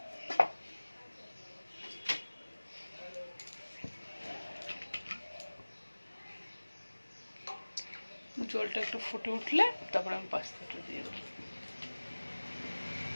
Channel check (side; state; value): both; inverted; correlation -1.00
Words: জলটা একটু ফুটে উঠলে তারপর আমি পাস্তাটা দিয়ে দেবো।